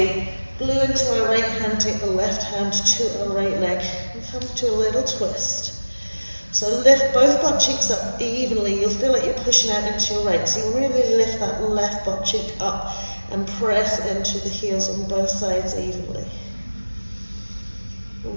glue into our right hand, take the left hand to our right leg, and come to a little twist. So lift both butt cheeks up evenly. You'll feel like you're pushing out into your right. So you really lift that left butt cheek up and press into the heels on both sides evenly.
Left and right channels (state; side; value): inverted; both; correlation -1.00